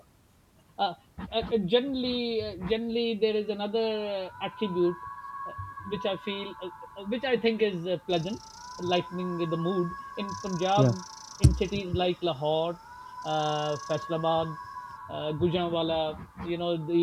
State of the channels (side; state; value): both; identical; correlation 1.00